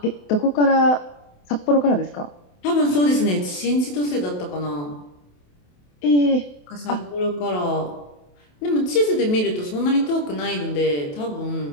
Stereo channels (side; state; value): right; late; 28 ms